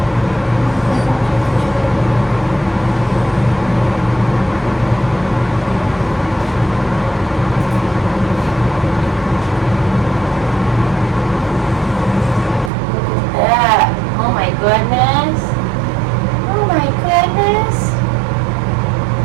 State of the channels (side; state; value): left; drops out; at 12.7 s